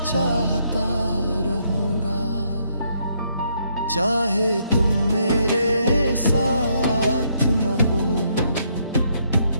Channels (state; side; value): inverted; both; correlation -0.73